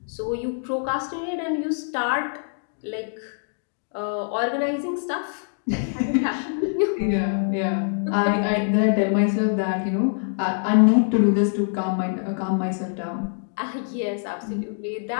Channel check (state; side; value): silent; right; digital silence